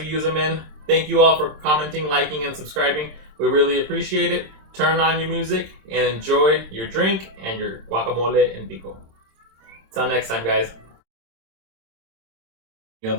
use them in. Thank you all for commenting, liking, and subscribing. We really appreciate it. Turn on your music and enjoy your drink and your guacamole and pico. Till next time, guys. The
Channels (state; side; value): late; left; 26 ms